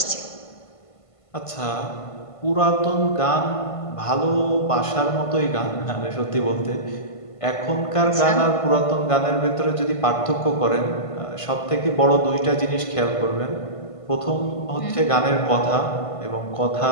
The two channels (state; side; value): late; right; 1.5 ms